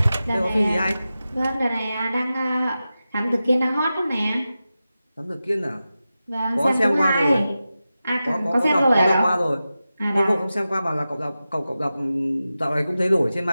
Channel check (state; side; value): inverted; both; correlation -0.93